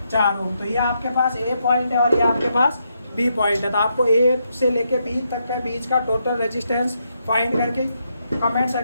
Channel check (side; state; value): both; inverted; correlation -0.80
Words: 4 ओम। तो ये आपके पास ए पॉइंट है और ये आपके पास बी पॉइंट है। तो आपको ए से लेके बी तक के बीच का टोटल रेजिस्टेंस फाइंड करके कमेंट